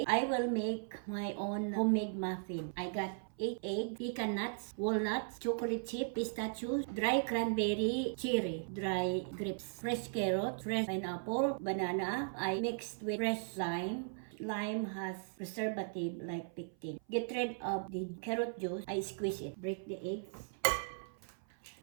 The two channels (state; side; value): silent; left; 53 dB below the other